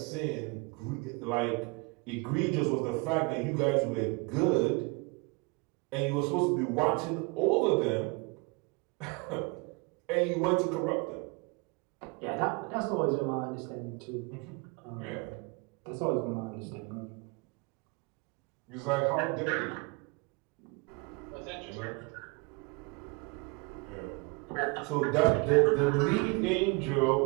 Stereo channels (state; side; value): quieter; left; 29.2 dB